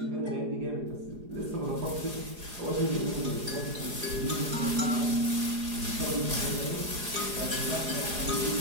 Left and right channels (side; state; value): left; late; 4.8 ms